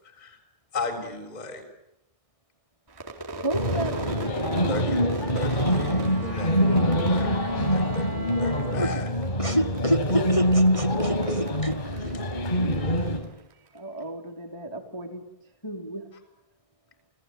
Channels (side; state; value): right; late; 1.5 ms